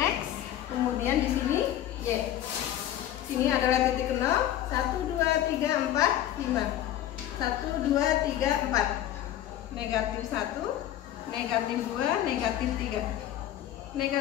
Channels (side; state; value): right; quieter; 12.1 dB